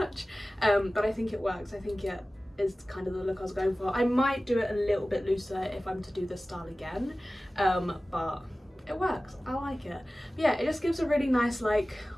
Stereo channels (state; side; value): normal; both; correlation 0.97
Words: but I think it works. I think it is kind of the look I was going for. I might do it a little bit looser if I'm to do this style again, but it works. I like it. But yeah, it just gives a really nice like